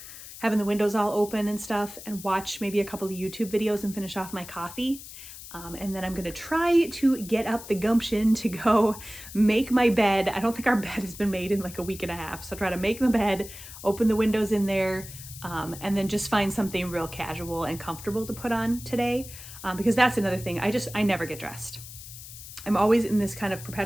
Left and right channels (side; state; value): left; noise; hiss, 14 dB below the sound